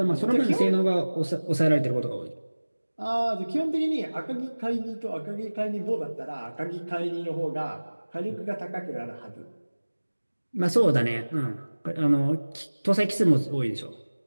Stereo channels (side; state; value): both; inverted; correlation -1.00